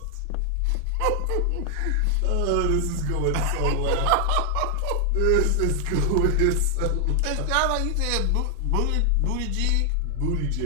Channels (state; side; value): different; both; correlation 0.00